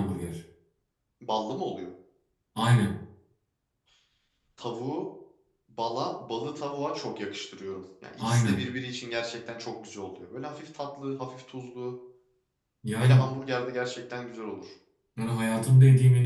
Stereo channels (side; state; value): both; identical; correlation 1.00